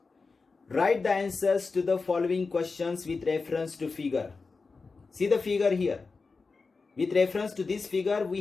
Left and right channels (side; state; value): right; quieter; 4.3 dB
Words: Write the answers to the following questions with reference to figure. See the figure here. With reference to this figure,